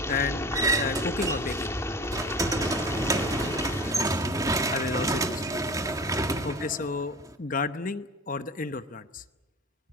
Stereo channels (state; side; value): normal; both; correlation 0.35